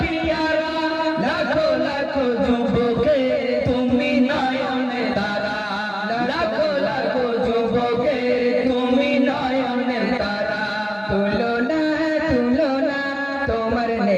লাখো লাখো যুবকে তুমি নয়নের তারা লাখো লাখো যুবকে তুমি নয়নের তারা তুলনা তুলনা তোমার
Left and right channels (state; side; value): identical; both; correlation 1.00